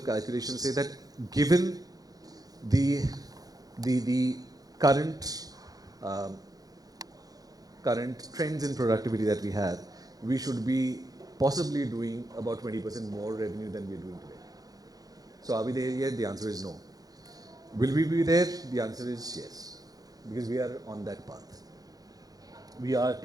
calculations say that given the current trends in productivity that we have, we should be possibly doing about 20% more revenue than we are doing today. So are we there yet? The answer is no. Will we be there? The answer is yes, because we are on that path. We are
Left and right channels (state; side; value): late; left; 0.18 ms